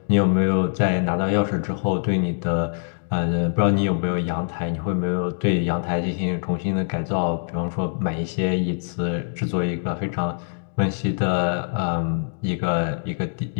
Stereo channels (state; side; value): silent; right; digital silence